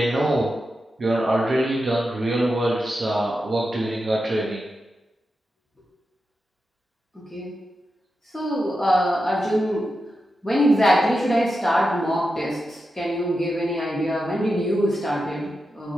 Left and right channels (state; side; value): normal; both; correlation 0.89